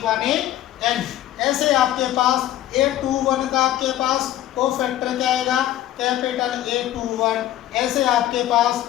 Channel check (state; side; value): quieter; right; 13.2 dB